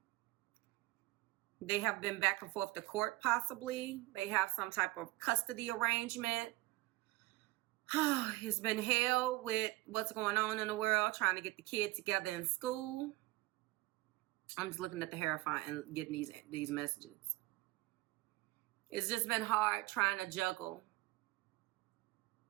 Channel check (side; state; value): left; quieter; 19.7 dB